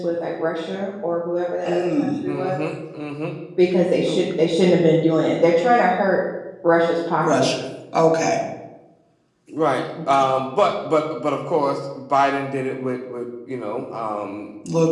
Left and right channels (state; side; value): identical; both; correlation 1.00